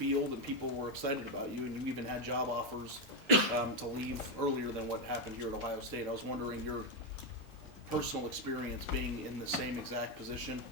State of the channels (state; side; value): normal; both; correlation 0.05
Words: and people were excited about you, and you even had job offers to leave earlier than what happened here at Ohio State. I was wondering your personal experience being in the same exact position,